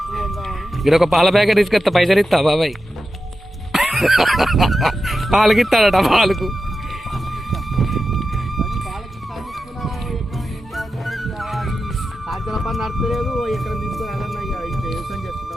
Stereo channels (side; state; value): both; normal; correlation 0.91